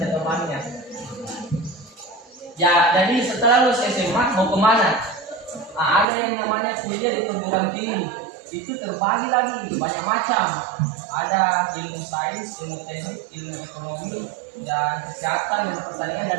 temannya. Ya, jadi setelah lulus SMA mau kemana? Nah, ada yang namanya kuliah di perguruan tinggi. Itu terbagi lagi banyak macam. Ada ilmu sains, ilmu teknik, ilmu ekonomi, dan kesehatan, dan pertanian,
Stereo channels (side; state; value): left; drops out; at 6.1 s